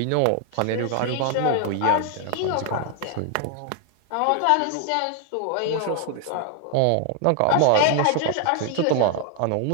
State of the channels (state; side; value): different; both; correlation 0.00